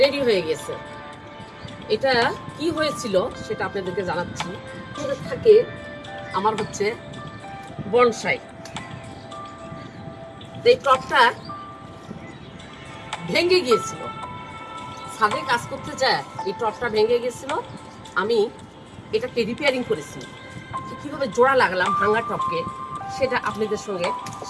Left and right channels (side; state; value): both; identical; correlation 1.00